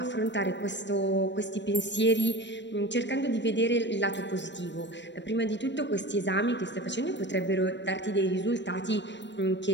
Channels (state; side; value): late; right; 0.52 ms